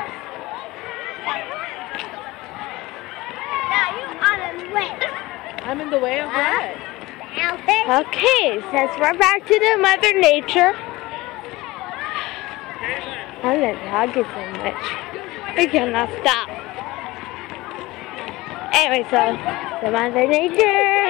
I'm in the way of what? Okay, since we're back to the Mother Nature, I'm not talking so much. I cannot stop. Anyway, so the Mother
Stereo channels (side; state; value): right; quieter; 20.0 dB